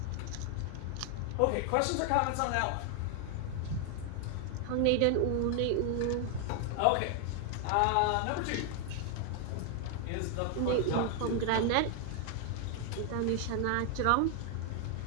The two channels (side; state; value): both; different; correlation 0.00